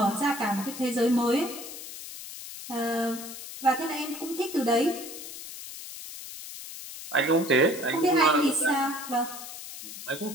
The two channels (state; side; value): noise; left; hiss, 11 dB below the sound